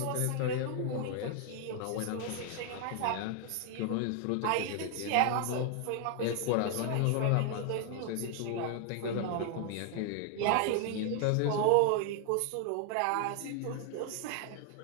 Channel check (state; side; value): different; both; correlation 0.00